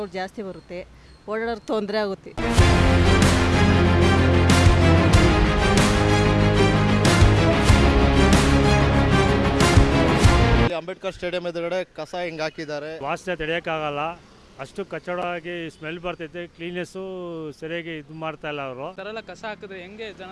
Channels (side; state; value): both; identical; correlation 1.00